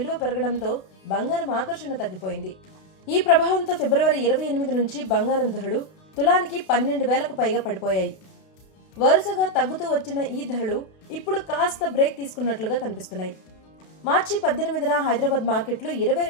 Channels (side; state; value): right; late; 32 ms